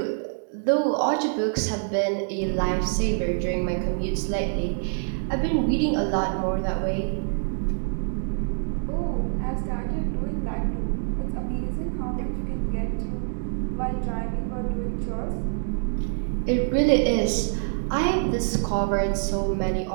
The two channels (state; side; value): silent; left; 60 dB below the other